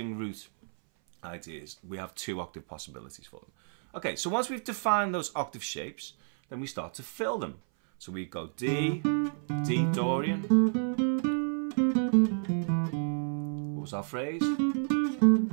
root ideas. We have 2 octave possibilities for them. Okay, so once we've defined those octave shapes, then we start to fill them. So we go D, D Dorian. What was our phrase?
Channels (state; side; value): silent; left; 58 dB below the other